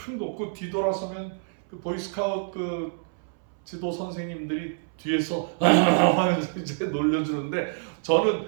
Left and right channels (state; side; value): silent; left; 60 dB below the other